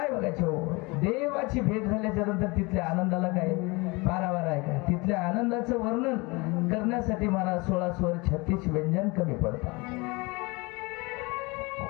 बघायचं हो, देवाची भेट झाल्याच्या नंतर तिथल्या आनंदाला काय पारावार आहे का? तिथल्या आनंदाचं वर्णन करण्यासाठी मला 16 स्वर 36 व्यंजन कमी पडतात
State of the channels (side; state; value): right; quieter; 25.9 dB